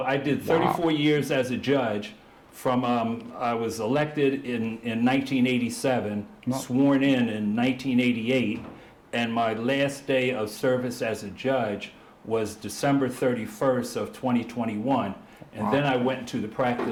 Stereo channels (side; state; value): both; identical; correlation 1.00